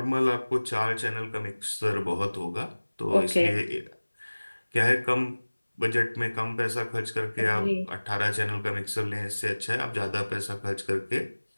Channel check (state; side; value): inverted; both; correlation -1.00